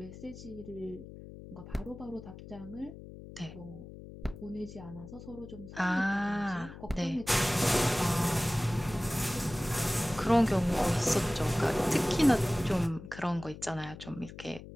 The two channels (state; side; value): noise; left; hum, 14 dB below the sound